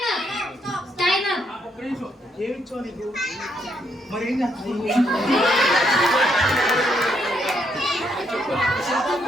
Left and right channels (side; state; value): both; normal; correlation 0.75